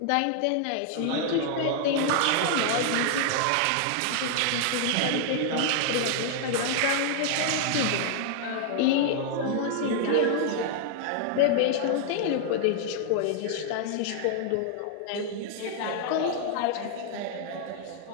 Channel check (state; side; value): different; both; correlation 0.00